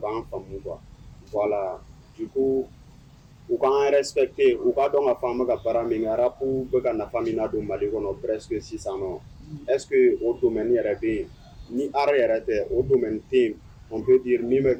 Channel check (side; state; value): both; identical; correlation 1.00